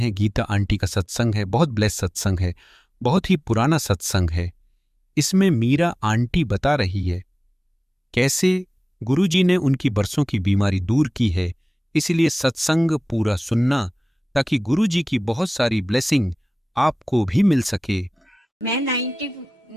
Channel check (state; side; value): normal; both; correlation 0.97